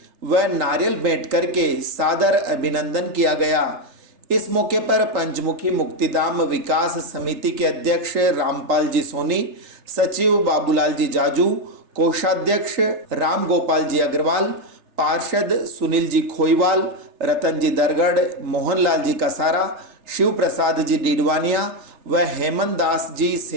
व नारियल भेंट करके सादर अभिनंदन किया गया। इस मौके पर पंचमुखी मुक्तिधाम विकास समिति के अध्यक्ष रामपाल जी सोनी, सचिव बाबूलाल जी जाजू, कोषाध्यक्ष राम गोपाल जी अग्रवाल, पार्षद सुनील जी खोईवाल, रतन जी दरगढ़, मोहनलाल जी कसारा, शिव प्रसाद जी डीडवानिया व हेमंत दास जी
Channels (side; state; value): left; late; 3.3 ms